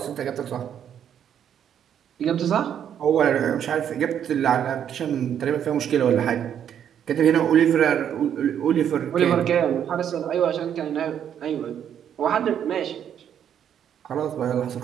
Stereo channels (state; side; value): quieter; left; 9.2 dB